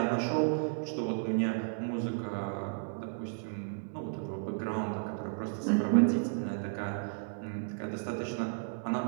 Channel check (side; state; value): left; silent; digital silence